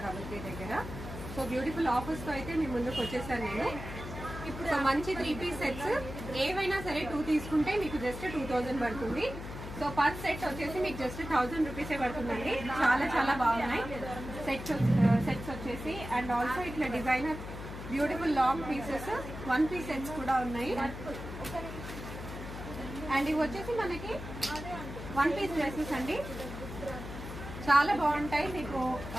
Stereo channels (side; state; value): left; noise; hum, 10 dB below the sound